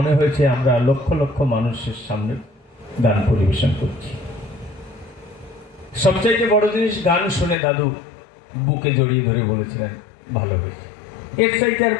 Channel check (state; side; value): drops out; right; at 7.6 s